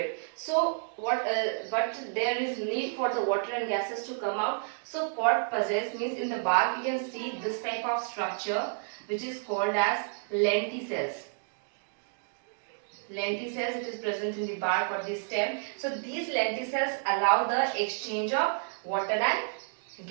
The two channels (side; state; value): left; silent; digital silence